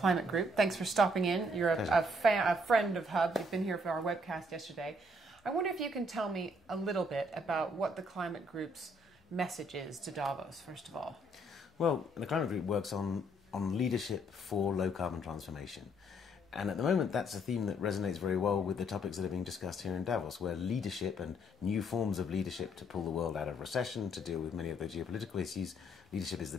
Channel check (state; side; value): normal; both; correlation 0.68